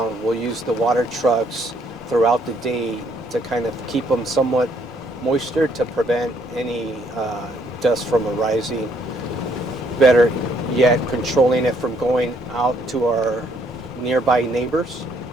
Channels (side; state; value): both; normal; correlation 0.68